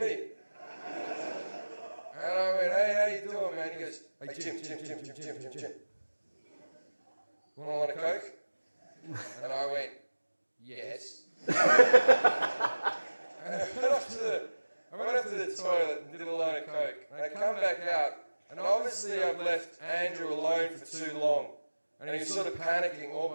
And I went, hey, how you doing, man? He goes, hey, Jim. Want a Coke? And I went, yes. And I went up to the toilet and did a line of Coke. And I come back out, and obviously I've left Andrew alone for too long. And he's sort of panicking all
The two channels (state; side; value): inverted; both; correlation -1.00